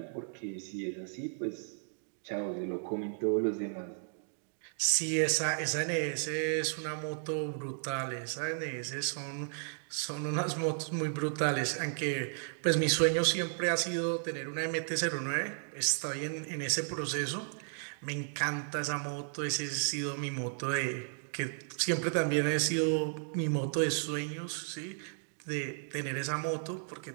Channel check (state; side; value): silent; left; digital silence